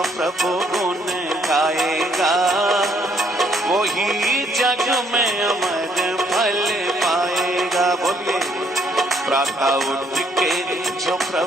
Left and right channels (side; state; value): both; normal; correlation 0.67